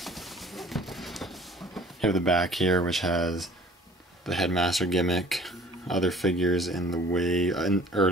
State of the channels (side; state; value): both; normal; correlation 0.50